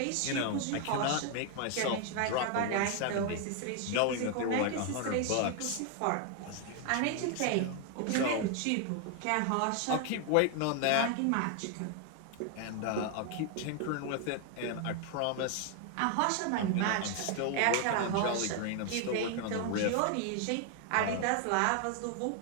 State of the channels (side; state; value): both; different; correlation 0.00